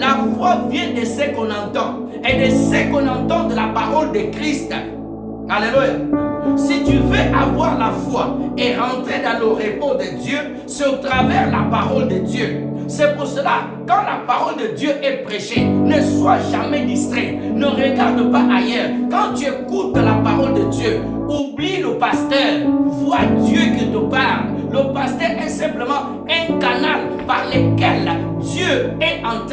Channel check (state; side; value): identical; both; correlation 1.00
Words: foi vient de ce qu'on entend, et de ce qu'on entend de la parole de Christ. Alléluia. Si tu veux avoir la foi et rentrer dans le repos de Dieu, c'est au travers la parole de Dieu. C'est pour cela, quand la parole de Dieu est prêchée, ne sois jamais distrait. Ne regarde pas ailleurs. Quand tu écoutes la parole de Dieu, oublie le pasteur. Vois Dieu qui te parle. Le pasteur est simplement un canal par lequel Dieu est en